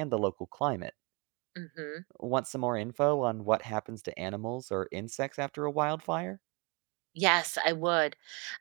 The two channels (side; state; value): left; quieter; 30.4 dB